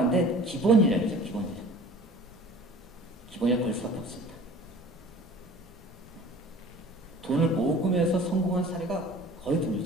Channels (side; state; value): both; normal; correlation 0.45